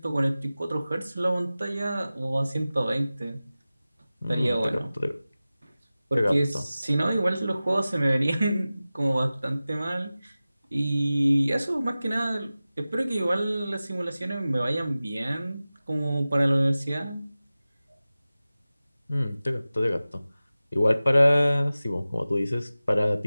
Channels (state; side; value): inverted; both; correlation -0.96